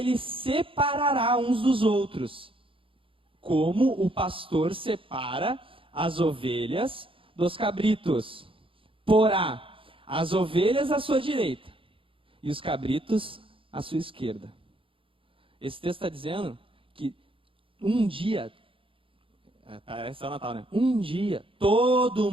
separará uns dos outros, como o pastor separa as ovelhas dos cabritos. Porá as ovelhas à sua direita e os cabritos à sua esquerda. Esse texto está dizendo que um dia, parece o Natal, né? Um dia, todo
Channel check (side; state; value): left; late; 0.26 ms